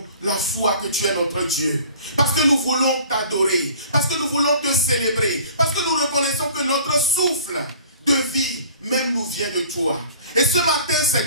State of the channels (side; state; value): both; inverted; correlation -0.48